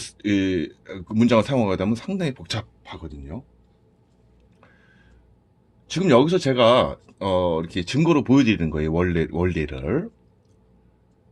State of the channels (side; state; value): both; identical; correlation 1.00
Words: 그 문장을 사용하게 되면 상당히 복잡하거든요. 지금 여기서 제가 이렇게 증거로 보여드리는 거예요. 원리를.